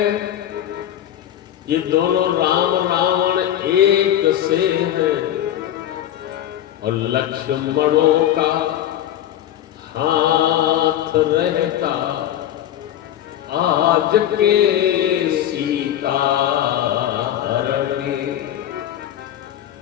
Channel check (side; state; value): right; quieter; 11.6 dB